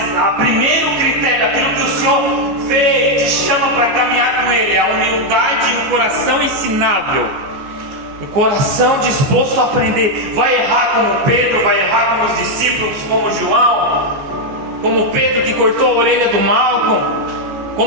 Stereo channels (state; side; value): late; left; 14 ms